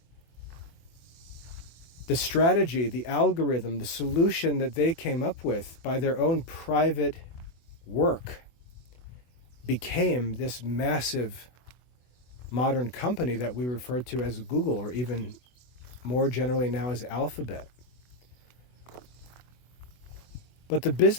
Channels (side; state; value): right; late; 24 ms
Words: The strategy, the algorithm, the solution that they came up with by their own private work became this massive modern company that we refer to as Google, or even more generally now as Alphabet. But the